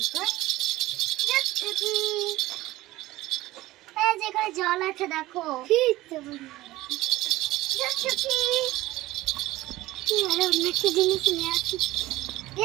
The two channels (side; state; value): left; quieter; 17.5 dB